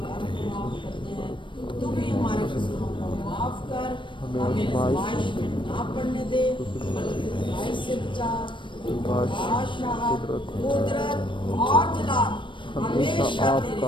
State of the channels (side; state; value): right; late; 0.24 ms